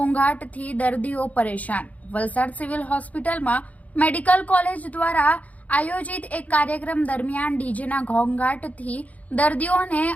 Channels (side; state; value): right; late; 0.072 ms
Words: દર્દીઓ પરેશાન। વલસાડ સિવિલ હોસ્પિટલમાં મેડિકલ કોલેજ દ્વારા આયોજિત એક કાર્યક્રમ દરમિયાન ડીજેના ઘોંઘાટથી દર્દીઓને